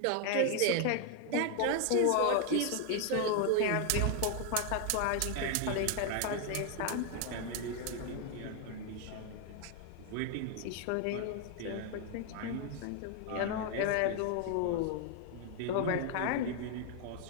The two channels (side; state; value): both; different; correlation 0.00